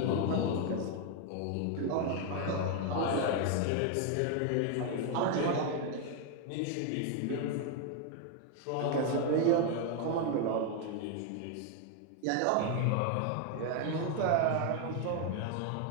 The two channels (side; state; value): both; different; correlation 0.00